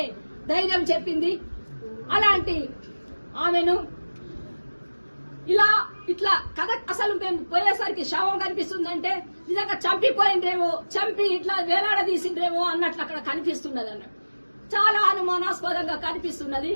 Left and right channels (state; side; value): inverted; both; correlation -1.00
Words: ధైర్యం చెప్పింది. అలాంటి ఆమెను ఇట్లా కథ అసలు మేము పోయేసరికి శవం కనిపిస్తుందంటే నిజంగా చంపి ఇట్లా వేలాడదీసిండ్రేమో అన్నట్లు అక్కడ కనిపిస్తున్నది అన్నట్టు. చాలా అనుమానాస్పదంగా కనిపిస్తున్నది.